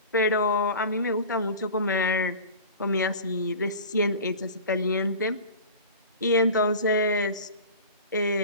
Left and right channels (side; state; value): both; inverted; correlation -0.37